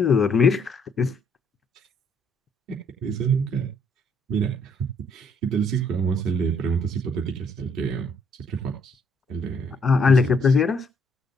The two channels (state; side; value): normal; both; correlation 0.68